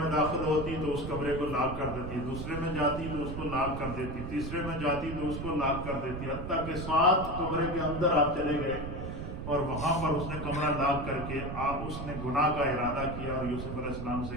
داخل ہوتی تو اس کمرے کو لاک کر دیتی، دوسرے میں جاتی تو اس کو لاک کر دیتی، تیسرے میں جاتی تو اس کو لاک کر دیتی، حتیٰ کہ 7 کمرے کے اندر آپ چلے گئے اور وہاں پر اس نے کمرہ لاک کر کے اس نے گناہ کا ارادہ کیا اور یوسف علیہ السلام سے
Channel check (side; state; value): right; noise; rumble, 6 dB below the sound